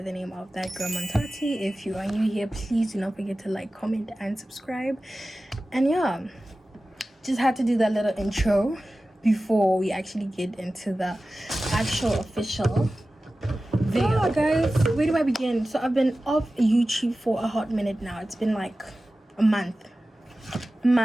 the name of that girl Montati. If you are new here, please do not forget to like, comment and subscribe. And yeah, just had to do that little intro before we actually get into the actual official video. Oh, guys, where do I begin? So I've been off YouTube for a hot minute now. It's been like a month,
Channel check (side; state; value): both; normal; correlation 0.95